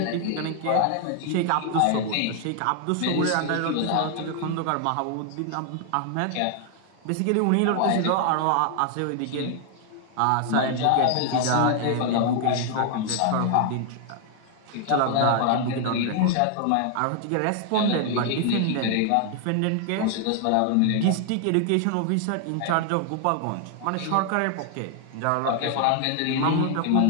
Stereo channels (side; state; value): both; different; correlation 0.00